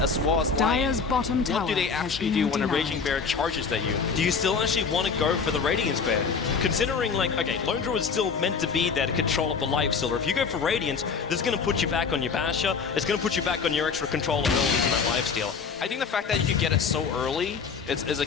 well as Lion. What do they actually do when a Raging Bear charges at you? Do you still actually want to go for the Radiance Bear? Considering, like, okay, Lone Druid is still meant to be there to control up the Lifestealer. If you go for Radiance, this is going to put you back on your Basher. It's going to put you back on your extra control abilities in that Lifestealer. I think the fact that you can get it so early is a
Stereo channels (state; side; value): quieter; right; 5.5 dB